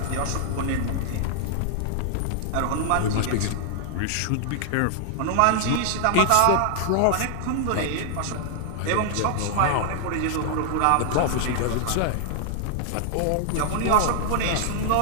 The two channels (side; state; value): both; different; correlation 0.00